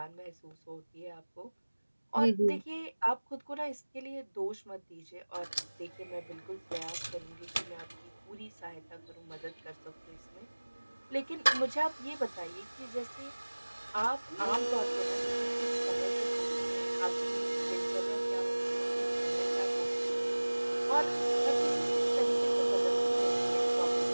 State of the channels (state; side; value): inverted; both; correlation -1.00